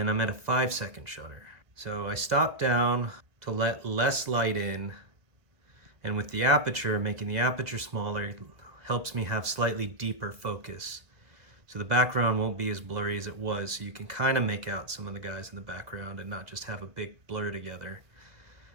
I'm at a 5-second shutter. So I stop down to let less light in, and with the aperture, making the aperture smaller helps me have slightly deeper focus. So the background won't be as blurry as it was, so you can kind of make out some of the guys in the background and not just have a big blur together.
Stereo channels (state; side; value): late; left; 2.0 ms